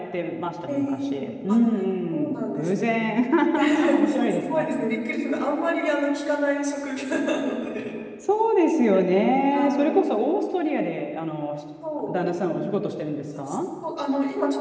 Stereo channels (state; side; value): identical; both; correlation 1.00